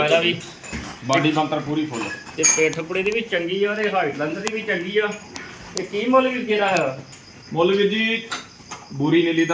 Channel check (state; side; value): identical; both; correlation 1.00